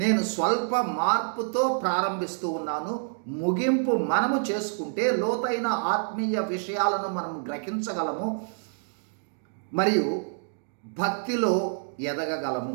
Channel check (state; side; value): silent; left; digital silence